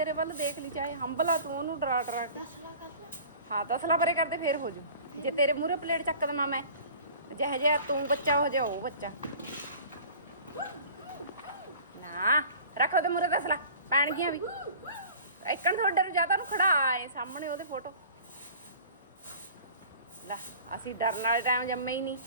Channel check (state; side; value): inverted; both; correlation -0.45